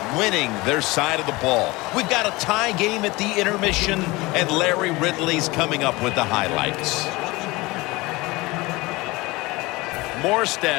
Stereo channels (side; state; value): right; quieter; 22.2 dB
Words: winning their side of the ball. We've got a tie game at the intermission, and Larry Ridley's coming up with the highlights.